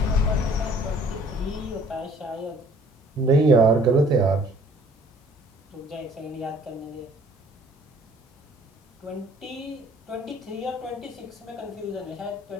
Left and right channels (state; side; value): normal; both; correlation 0.56